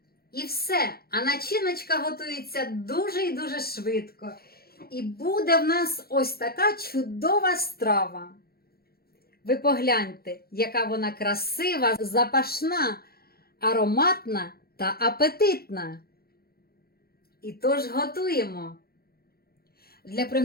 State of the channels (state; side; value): late; right; 0.44 ms